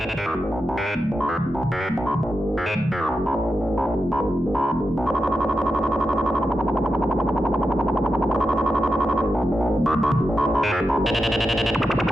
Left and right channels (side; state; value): both; normal; correlation 0.89